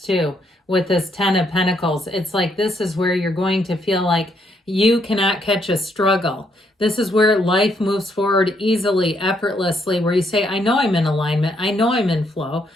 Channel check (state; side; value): normal; both; correlation 0.73